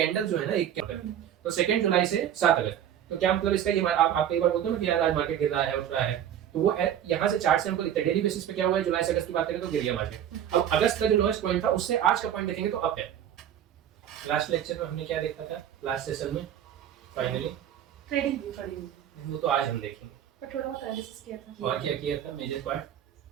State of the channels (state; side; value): quieter; left; 10.1 dB